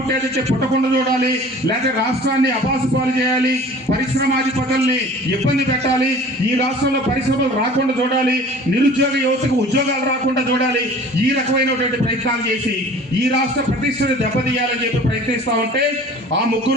పుట్టకుండా చూడాలి, లేకపోతే రాష్ట్రాన్ని అబాసుపాలు చేయాలి, పరిశ్రమాధిపతుల్ని ఇబ్బంది పెట్టాలి, ఈ రాష్ట్రంలో పరిశ్రమలు రాకుండా చూడాలి, నిరుద్యోగ యువతకు ఉద్యోగాలు రాకుండా చూడాలి. ఈ రకమైనటువంటి ప్రయత్నాలు చేసి ఈ రాష్ట్ర ప్రతిష్టను దెబ్బతీయాలని చెప్పి ప్రయత్నిస్తా ఉంటే ఆ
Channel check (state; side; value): normal; both; correlation 0.45